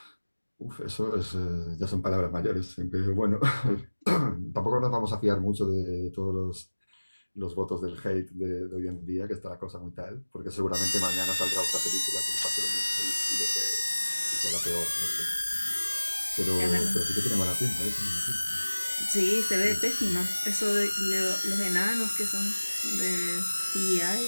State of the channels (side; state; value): both; inverted; correlation -1.00